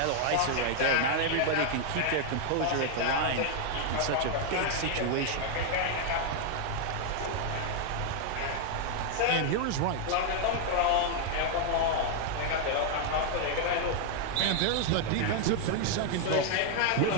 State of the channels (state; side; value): different; both; correlation 0.00